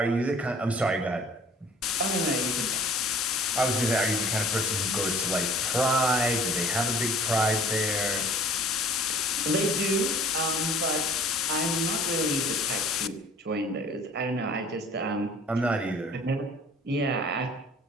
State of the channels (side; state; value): both; normal; correlation 0.51